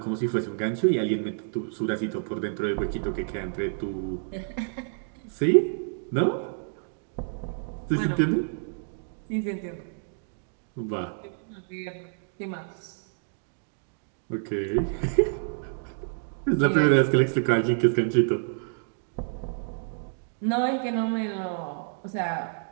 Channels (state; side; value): silent; left; digital silence